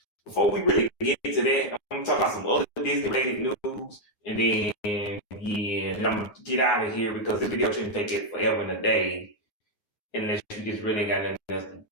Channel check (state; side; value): late; right; 9.6 ms